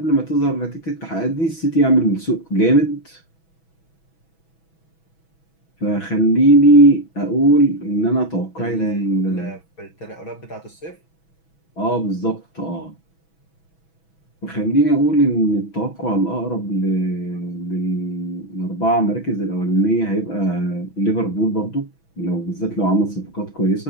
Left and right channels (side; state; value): right; late; 6.1 ms